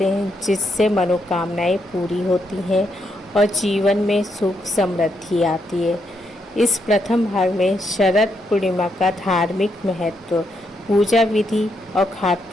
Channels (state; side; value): normal; both; correlation 0.79